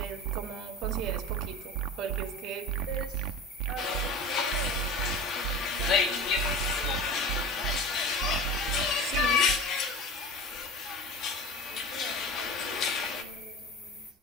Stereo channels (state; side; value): normal; both; correlation 0.34